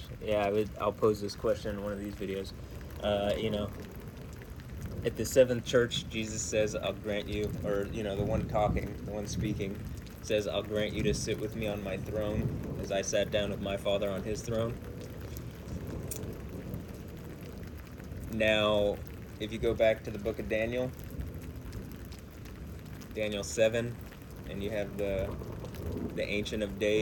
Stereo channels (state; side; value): identical; both; correlation 1.00